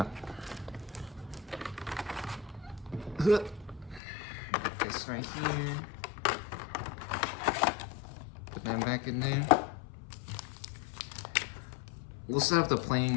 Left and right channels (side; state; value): right; drops out; at 4.0 s